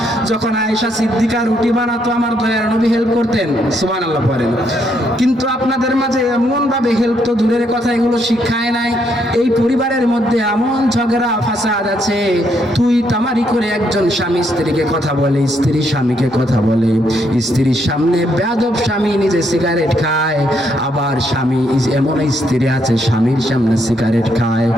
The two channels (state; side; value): normal; both; correlation 0.74